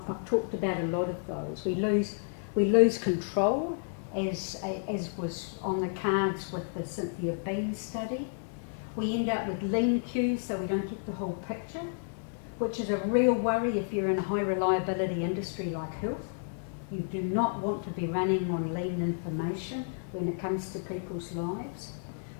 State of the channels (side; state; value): right; silent; 57 dB below the other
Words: talked about a lot of those. We lose control, as was on the cards with the Cynthia Bean study. We end up with lean queues, so we don't get the whole picture, which is a real worry if you're in a high reliability industry like health. You do not want to be running on lean information when it comes to people's lives.